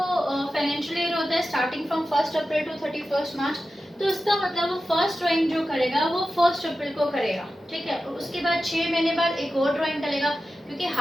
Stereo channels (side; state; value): both; normal; correlation 0.93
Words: फाइनेंशियल ईयर होता है स्टार्टिंग फ्रॉम 1 अप्रैल टू 31 मार्च, तो उसका मतलब वो फर्स्ट ड्राइंग जो करेगा वो 1 अप्रैल को करेगा, ठीक है। उसके बाद 6 महीने बाद एक और ड्राइंग करेगा, क्योंकि